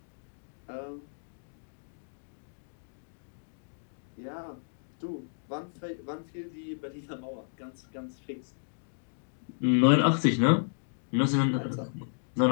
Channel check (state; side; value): silent; right; digital silence